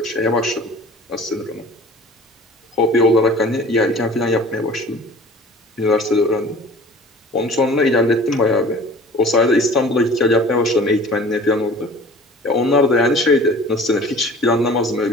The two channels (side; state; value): both; normal; correlation 0.45